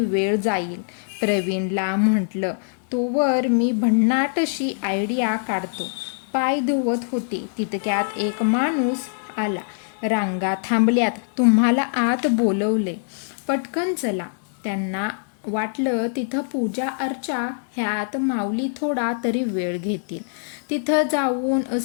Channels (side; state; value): right; silent; digital silence